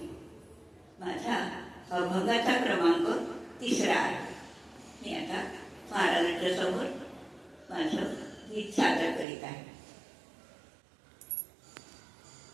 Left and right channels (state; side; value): drops out; left; at 9.2 s